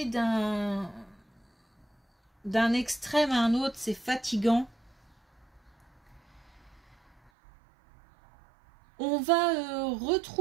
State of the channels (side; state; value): left; drops out; at 7.3 s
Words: d'un extrême à un autre, c'est fatigant. On va